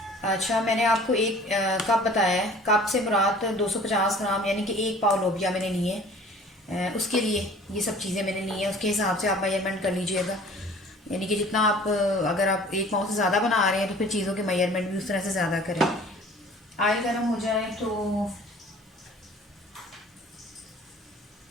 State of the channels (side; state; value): both; normal; correlation 0.48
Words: अच्छा, मैंने आपको 1 कप बताया है। कप से मुराद 250 ग्राम यानी कि 1 पाव लोबिया मैंने लिए। उसके लिए ये सब चीज़ें मैंने ली हैं, उसके हिसाब से आप मेजरमेंट कर लीजिएगा। यानी कि जितना आप, अगर आप 1 पाव से ज़्यादा बना रहे हैं तो फिर चीज़ों के मेजरमेंट भी उस तरह से ज़्यादा करें। ऑयल गर्म हो जाए तो